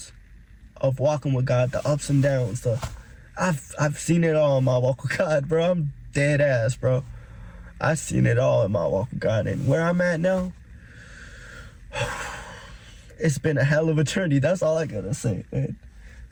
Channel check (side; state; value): both; identical; correlation 1.00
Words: of walking with God, the ups and downs. I've seen it all in my walk with God, bro. I'm dead ass, bro. I've seen it all in my walk with God, and where I'm at now, it's been a hell of a journey. That's all I gotta say, man.